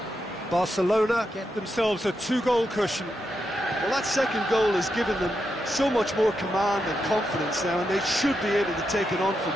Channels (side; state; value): both; normal; correlation 0.85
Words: Barcelona get themselves a 2-goal cushion. Well, that second goal has given them so much more command and confidence now, and they should be able to take it on from